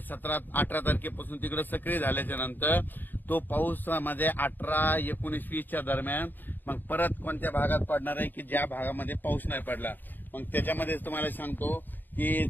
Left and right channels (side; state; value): right; late; 0.090 ms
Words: 17-18 तारखेपासून तिकडे सक्रिय झाल्याच्या नंतर तो पाऊस मध्ये 18, 19, 20च्या दरम्यान मग परत कोणत्या भागात पडणार आहे की ज्या भागामध्ये पाऊस नाही पडला. मग त्याच्यामध्ये तुम्हाला सांगतो की